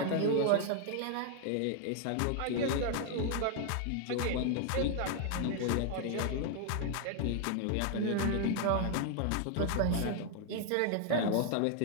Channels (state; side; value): different; both; correlation 0.00